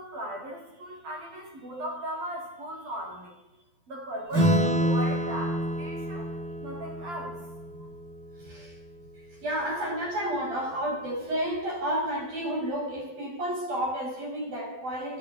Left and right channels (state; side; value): late; left; 12 ms